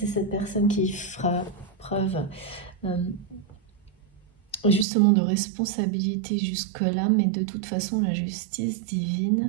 cette personne qui fera preuve justement de responsabilité jusque-là, mais de toute façon, la justice divine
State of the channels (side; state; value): left; drops out; at 4.9 s